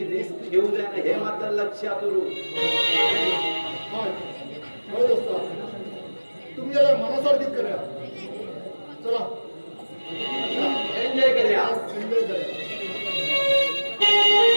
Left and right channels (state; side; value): inverted; both; correlation -1.00